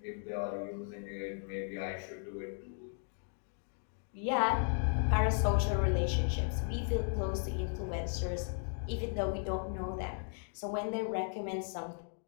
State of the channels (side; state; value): right; silent; 54 dB below the other